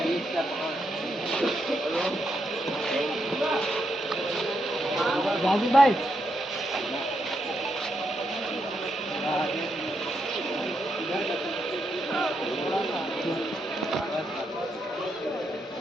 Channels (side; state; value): both; normal; correlation 0.81